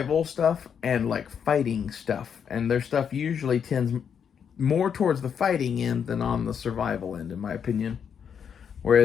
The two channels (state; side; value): quieter; right; 7.5 dB